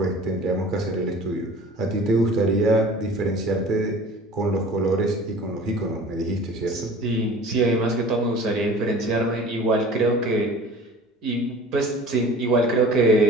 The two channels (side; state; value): both; normal; correlation 0.43